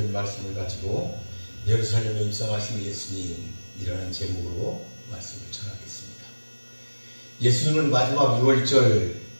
말씀을 가지고 예루살렘에 입성하신 예수님이라는 제목으로 말씀을 전하겠습니다. 예수님은 마지막 유월절을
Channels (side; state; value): both; inverted; correlation -1.00